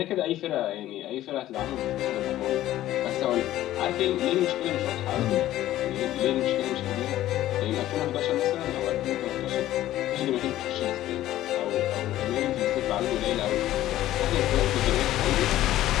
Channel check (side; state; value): right; quieter; 14.1 dB